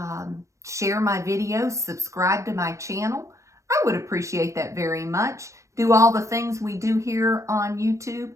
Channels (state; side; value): late; left; 0.15 ms